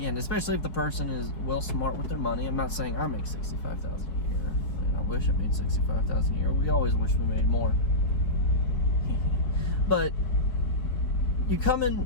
especially if the person is well smart with their money. I'm not saying I make $65,000 a year. I wish I made $65,000 a year. We always wish we made more. But you come in,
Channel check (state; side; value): late; right; 4.6 ms